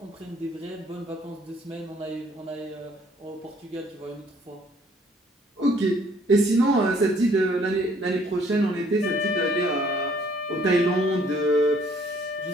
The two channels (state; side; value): normal; both; correlation 0.61